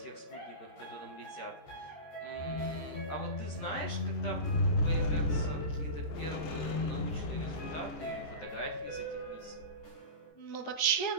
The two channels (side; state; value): right; late; 13 ms